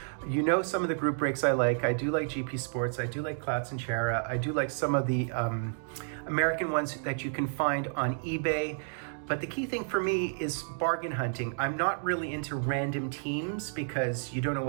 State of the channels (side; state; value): left; silent; digital silence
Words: Some of the group breaks I like. I do like GP Sports. I do like Clouts and Chara. I do like some of the American ones that you can find on eBay. But the key thing for me is bargain hunting. I'm not really into random teams because you don't know